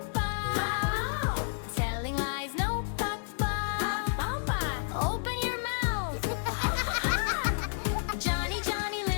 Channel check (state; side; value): silent; right; digital silence